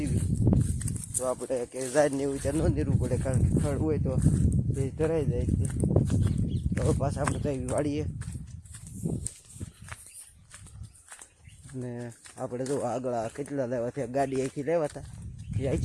તો આપણે કે ઝાડ ને એવું ત્યાં ન નીરવું પડે કારણ કે ખડ હોય તો તે ધરાઈ જાય છે. તો પાછા આપણે કઈ વાળીએ અને આપણે જો આગળ કેટલા લેવા થયા ગાડી અહીંથી લેવા હતા એ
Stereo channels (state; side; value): identical; both; correlation 1.00